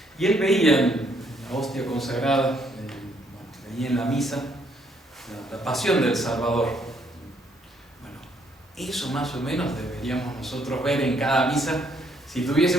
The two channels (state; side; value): normal; both; correlation 0.69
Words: Y él veía en la hostia consagrada, veía en la misa la pasión del Salvador. Bueno, eso más o menos deberíamos nosotros ver en cada misa si